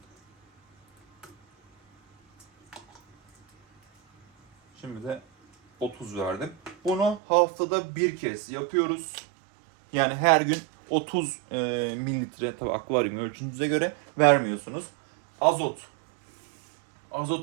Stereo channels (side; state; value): left; drops out; at 7.2 s